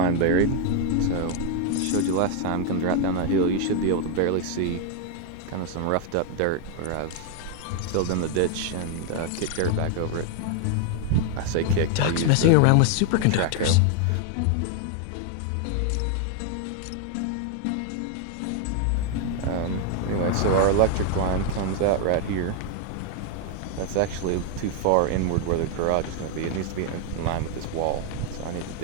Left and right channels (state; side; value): different; both; correlation 0.00